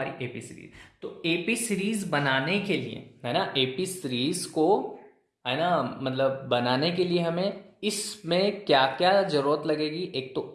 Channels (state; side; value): identical; both; correlation 1.00